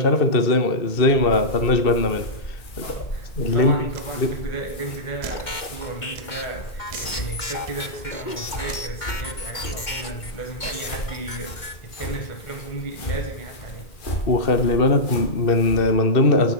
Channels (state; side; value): late; right; 2.2 ms